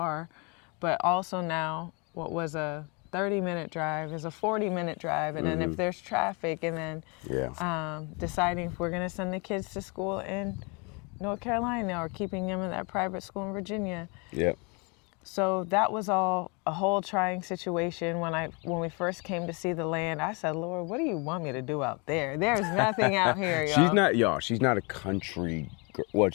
but also now what was a 30-minute drive is a 40-minute drive. And then if there's traffic, and then deciding if we're going to send the kids to school in North Carolina or keeping them in that private school in Virginia. Yep. So that was all a whole trying situation. When we first came to see the land, I said, Lord, what do you want me to do out there? There's nothing out here, y'all. She's not a country girl.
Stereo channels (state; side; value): quieter; right; 31.5 dB